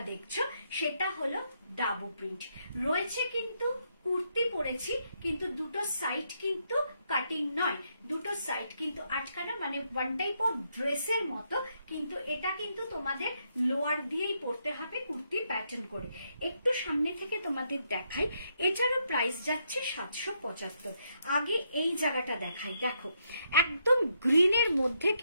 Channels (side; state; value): both; inverted; correlation -0.77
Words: দেখছো সেটা হলো ডাবু প্রিন্ট রয়েছে। কিন্তু কুর্তি পরেছি, কিন্তু দুটো সাইড কিন্তু কাটিং নয়, দুটো সাইড কিন্তু আটকানো, মানে ওয়ান টাইপ অফ ড্রেসের মতো, কিন্তু এটা কিন্তু তোমাদের লোয়ার দিয়েই পরতে হবে কুর্তি প্যাটার্ন করে। একটু সামনে থেকে তোমাদের দেখাই, এটারও প্রাইস যাচ্ছে 775। আগে এই জায়গাটা দেখাই, দেখো একদম গ্রিনের মধ্যে